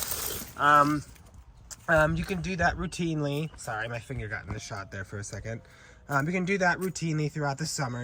You can do that routinely. Sorry, my finger got in the shot there for a second. You can do that routinely throughout the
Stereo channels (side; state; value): both; identical; correlation 1.00